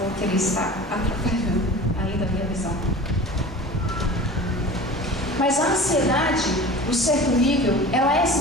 que ele está atrapalhando ainda a minha visão. Mas a ansiedade, no certo nível, ela é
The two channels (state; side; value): normal; both; correlation 0.38